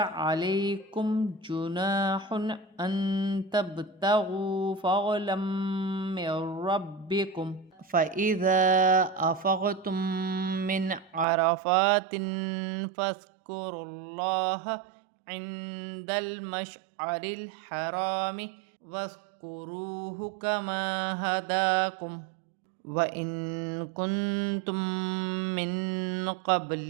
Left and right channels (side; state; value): left; drops out; at 11.2 s